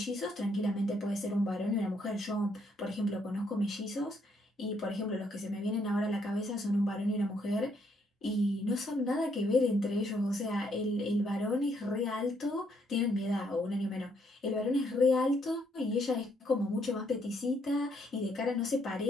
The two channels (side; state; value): both; normal; correlation 0.72